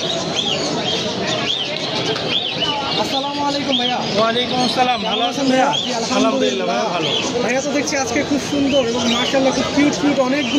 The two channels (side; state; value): both; identical; correlation 1.00